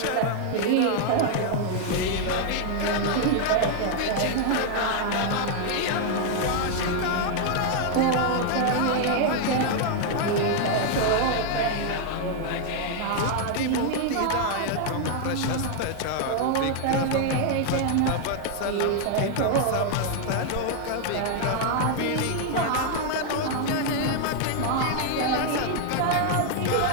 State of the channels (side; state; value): both; different; correlation 0.00